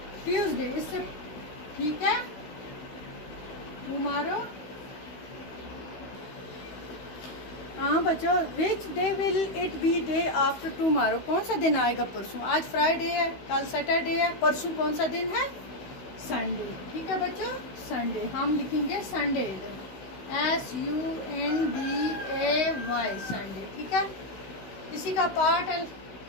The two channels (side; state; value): right; late; 16 ms